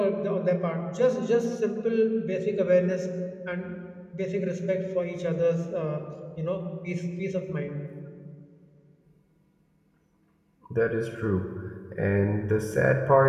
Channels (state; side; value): identical; both; correlation 1.00